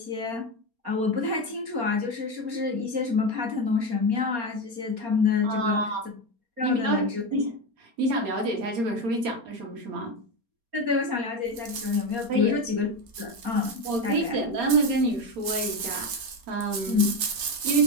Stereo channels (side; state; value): left; late; 4.3 ms